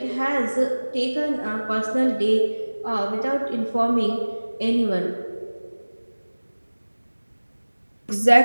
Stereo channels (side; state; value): both; inverted; correlation -1.00